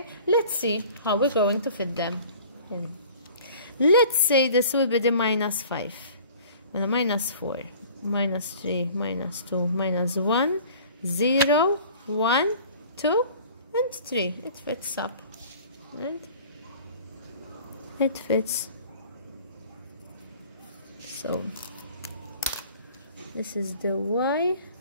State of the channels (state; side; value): inverted; both; correlation -0.47